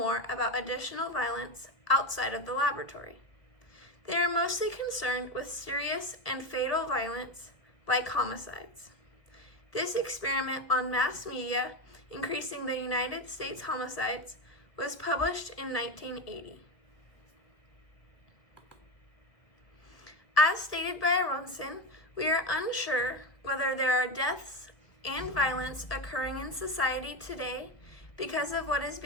about additional violence outside of the laboratory. They are mostly concerned with serious and fatal violence like homicides. This experiment on mass media increasing the United States homicides was published in 1980. As stated by Aronson, we are unsure whether there are deaths and violence occurring in society today because of what is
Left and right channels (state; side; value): late; right; 1.4 ms